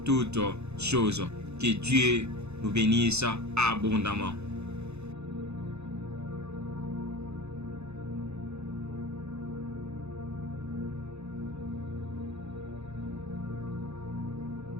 toutes choses. Que Dieu nous bénisse abondamment.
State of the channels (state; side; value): late; left; 0.81 ms